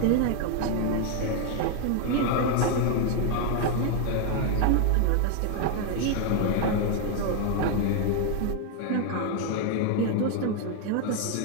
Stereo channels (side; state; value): both; different; correlation 0.01